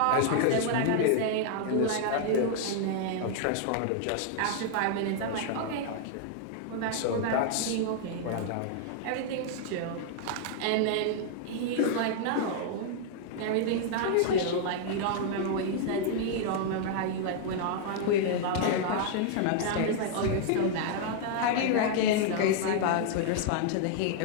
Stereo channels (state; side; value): different; both; correlation -0.01